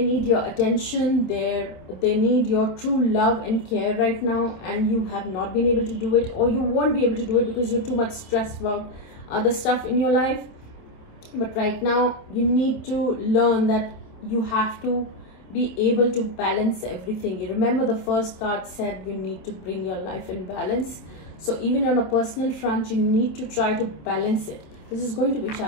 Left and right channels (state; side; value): late; right; 27 ms